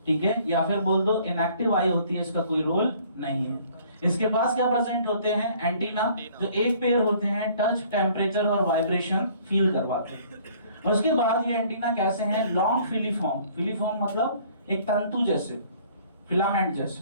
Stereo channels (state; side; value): inverted; both; correlation -0.57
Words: ठीक है, या फिर बोल दो इनएक्टिव आई होती है, इसका कोई रोल नहीं है। इसके पास क्या प्रेजेंट होते हैं? एंटीना, जो एक पेयर होते हैं, टच, टेम्परेचर और वाइब्रेशन फील करवाते हैं। उसके बाद ये एंटीना कैसे हैं? Long filiform. फिलीफॉर्म मतलब एक तंतु जैसे, फिलामेंट